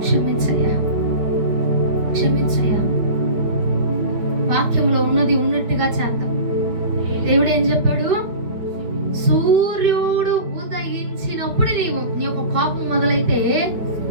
క్షమించయ్యా, క్షమించయ్యా. వాక్యంలో ఉన్నది ఉన్నట్టుగా చేద్దాం. దేవుడు ఏం చెప్పాడు? సూర్యుడు ఉదయించినప్పుడు నీ యొక్క కోపం మొదలైతే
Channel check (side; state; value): left; late; 4.9 ms